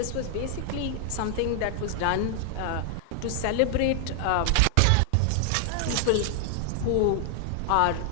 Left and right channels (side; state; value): both; different; correlation 0.00